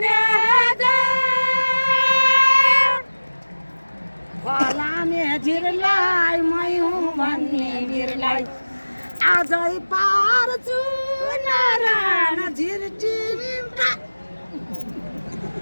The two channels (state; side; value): inverted; both; correlation -1.00